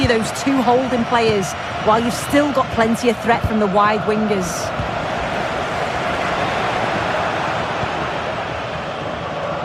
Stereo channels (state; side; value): identical; both; correlation 1.00